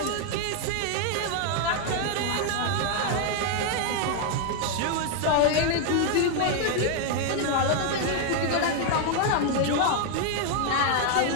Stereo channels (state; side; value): different; both; correlation 0.00